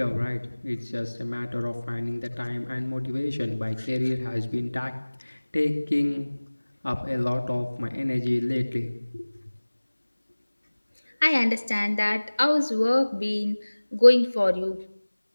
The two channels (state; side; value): inverted; both; correlation -1.00